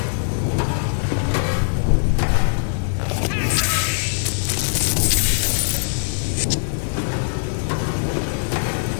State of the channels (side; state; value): right; silent; digital silence